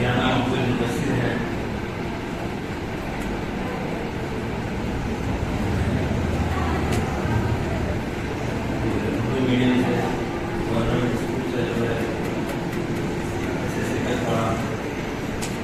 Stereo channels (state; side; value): identical; both; correlation 1.00